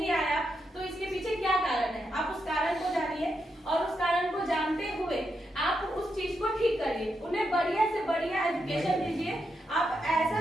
जानिए और उस कारण को जानते हुए आप उस चीज को ठीक करिए, उन्हें बढ़िया से बढ़िया एजुकेशन दीजिए। आप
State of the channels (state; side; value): normal; both; correlation 0.83